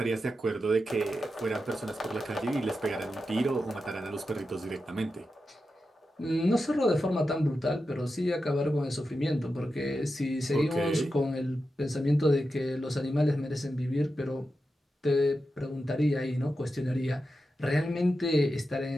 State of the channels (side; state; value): both; normal; correlation 0.90